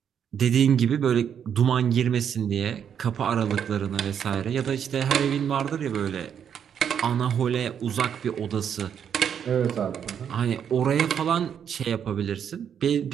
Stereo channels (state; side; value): quieter; left; 8.3 dB